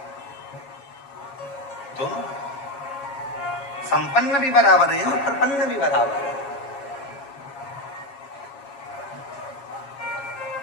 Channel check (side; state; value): right; late; 7.2 ms